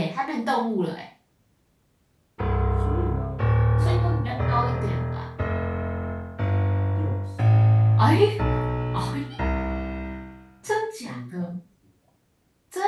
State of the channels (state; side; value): identical; both; correlation 1.00